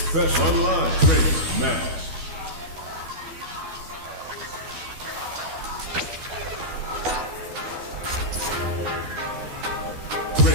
Best online training match.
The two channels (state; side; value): late; left; 12 ms